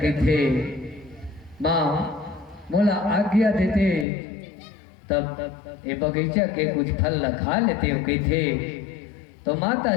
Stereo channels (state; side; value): drops out; right; at 4.0 s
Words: कहते माँ मोला आज्ञा देते तब ये बगीचा के कुछ फल ला खा लेते हो कहते तो माता